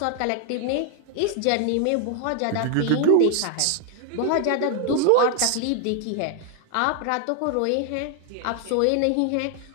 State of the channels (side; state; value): both; different; correlation 0.00